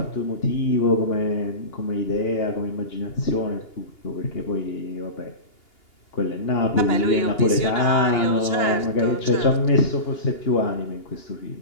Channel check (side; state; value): right; late; 2.8 ms